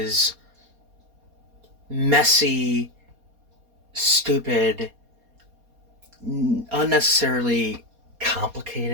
messy, stupid, unnecessarily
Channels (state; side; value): late; left; 4.2 ms